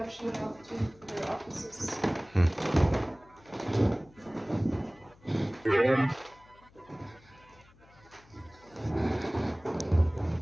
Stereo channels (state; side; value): noise; left; hum, 27 dB below the sound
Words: shown off to for their offices.